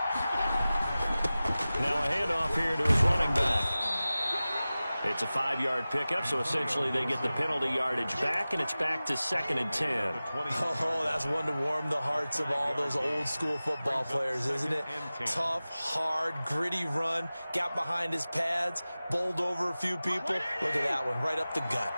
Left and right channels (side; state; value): both; inverted; correlation -0.97